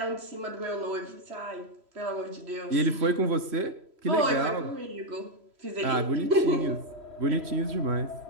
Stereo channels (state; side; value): late; left; 3.1 ms